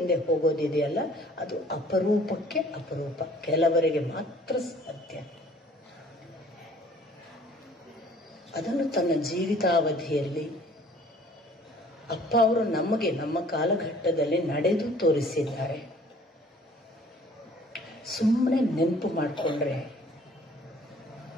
ಹೋಗೋದಿದೆಯಲ್ಲ, ಅದು ಅಪರೂಪಕ್ಕೆ ಅಪರೂಪ, ಕೆಲವರಿಗೆ ಮಾತ್ರ ಸಾಧ್ಯ. ಅದನ್ನು ತನ್ನ ಜೀವಿತಾವಧಿಯಲ್ಲಿ ಅಪ್ಪ ಅವರು ನಮಗೆ ನಮ್ಮ ಕಾಲಘಟ್ಟದಲ್ಲಿ ನಡೆದು ತೋರಿಸಿದ್ದಾರೆ. ಸುಮ್ಮನೆ ನೆನಪು ಮಾಡಿಕೊಂಡ್ರೆ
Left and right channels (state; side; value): normal; both; correlation 0.54